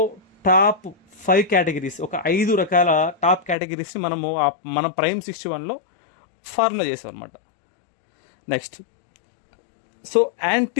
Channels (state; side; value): drops out; right; at 3.6 s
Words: టాప్ 5 కేటగిరీస్, ఒక 5 రకాల టాప్ కేటగిరీస్ని మనము మన ప్రైమ్ 61లో ఫార్ములా చేసాం అనమాట. Next, so